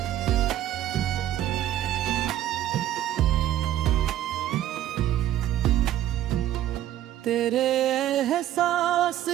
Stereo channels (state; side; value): quieter; left; 12.5 dB